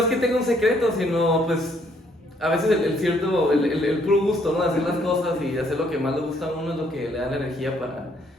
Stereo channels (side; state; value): both; normal; correlation 0.68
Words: que tenga un secreto, sino pues a veces el puro gusto, ¿no? De hacer las cosas y hacer lo que más le gusta a uno es lo que le da la energía